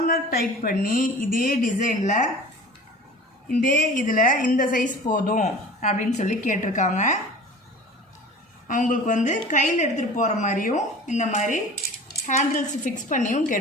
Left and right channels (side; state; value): both; normal; correlation 0.41